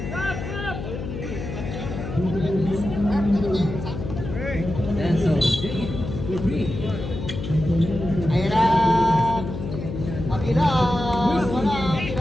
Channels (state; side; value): noise; left; hum, 7 dB below the sound